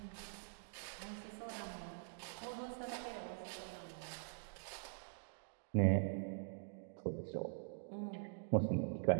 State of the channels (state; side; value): silent; left; digital silence